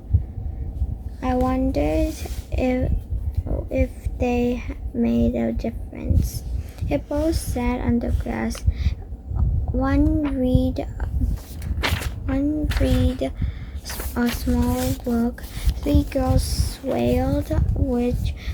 I wondered if they made a difference. Hippos sat on the grass. One read a small book. 3 girls wailed, which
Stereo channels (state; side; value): identical; both; correlation 1.00